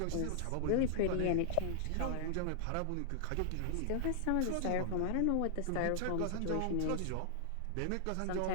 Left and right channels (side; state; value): both; different; correlation -0.01